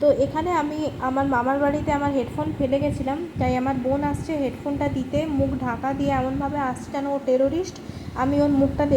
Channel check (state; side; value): identical; both; correlation 1.00